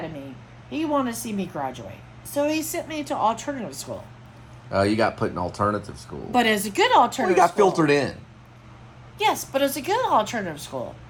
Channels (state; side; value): identical; both; correlation 1.00